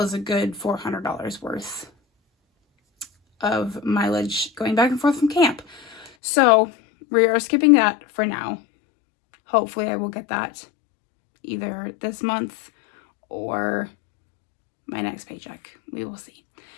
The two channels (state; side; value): drops out; right; at 6.1 s